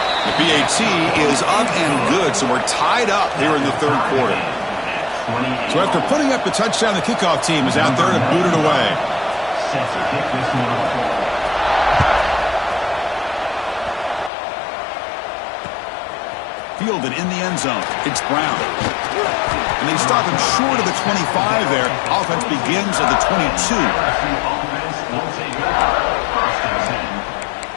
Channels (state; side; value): drops out; right; at 14.3 s